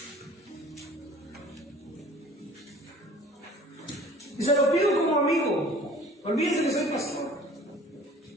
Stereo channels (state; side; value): normal; both; correlation 0.48